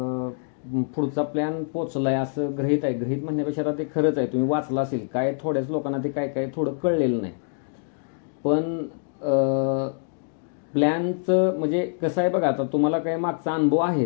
पुढचा प्लॅन पोचलाय असं गृहीत आहे. गृहीत म्हणण्यापेक्षा आता ते खरंच आहे, तुम्ही वाचलं असेल. काय थोड्याच लोकांना ते काय थोडं कळलेलं नाही. पण प्लॅनचं म्हणजे कसं आहे बघा, आता तुम्हाला काय मागचा अनुभव आहे,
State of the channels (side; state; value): right; silent; digital silence